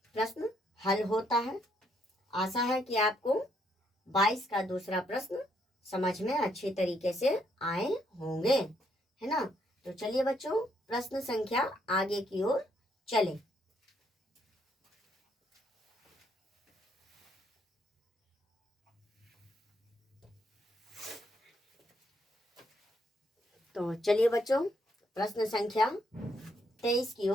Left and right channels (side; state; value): both; normal; correlation 0.73